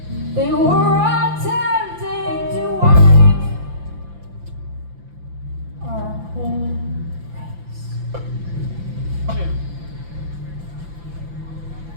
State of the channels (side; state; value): left; late; 5.9 ms